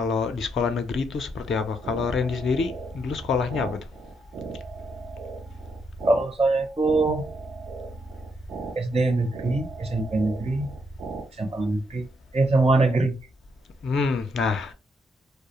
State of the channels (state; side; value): normal; both; correlation 0.77